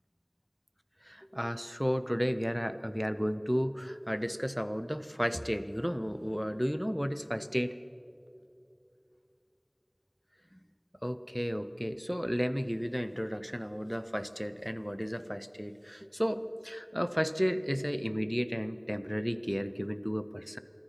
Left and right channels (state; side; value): identical; both; correlation 1.00